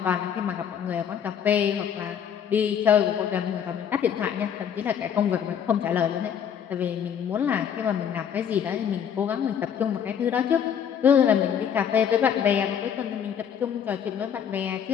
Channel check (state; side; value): quieter; right; 8.3 dB